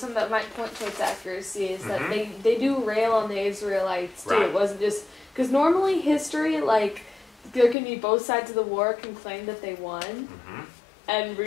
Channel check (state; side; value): drops out; right; at 7.8 s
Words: that might point to its accuracy is that they do rail on the Israelites too. Right. It wasn't just because normally history, like, there can be both sides of the war can claim that they won. And